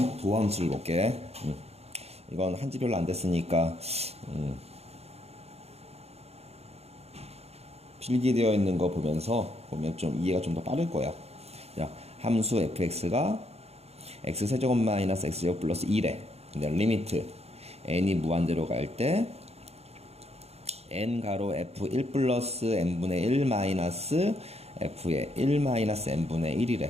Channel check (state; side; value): late; left; 0.30 ms